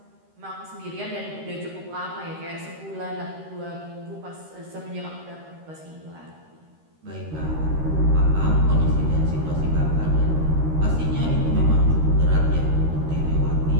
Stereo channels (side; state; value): left; late; 13 ms